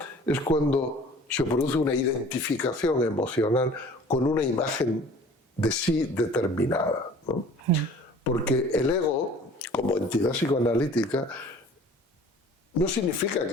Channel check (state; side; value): normal; both; correlation 0.47